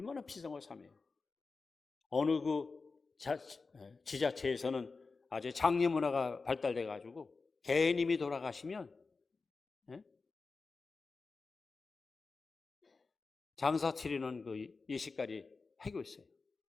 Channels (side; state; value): right; quieter; 4.2 dB